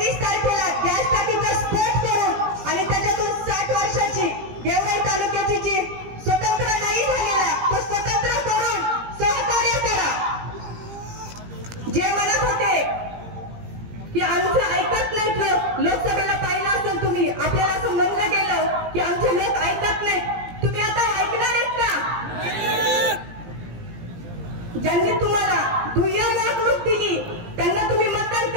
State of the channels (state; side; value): late; left; 17 ms